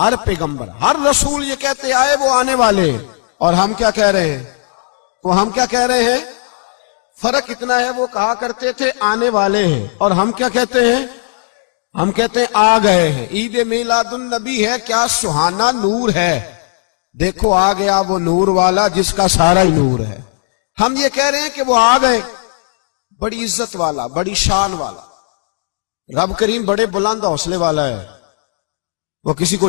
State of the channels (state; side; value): silent; right; digital silence